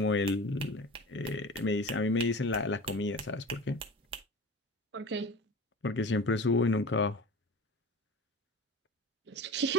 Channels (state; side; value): normal; both; correlation 0.34